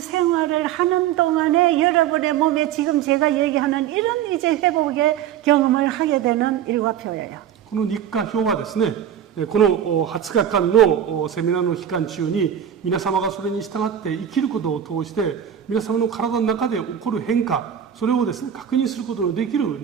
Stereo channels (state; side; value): quieter; left; 9.6 dB